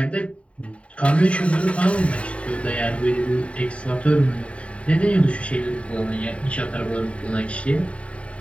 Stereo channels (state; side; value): late; right; 0.063 ms